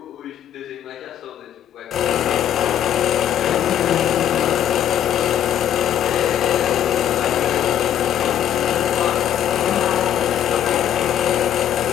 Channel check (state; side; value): quieter; right; 10.3 dB